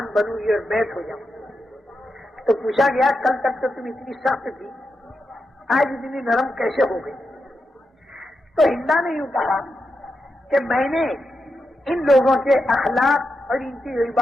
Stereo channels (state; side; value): normal; both; correlation 0.87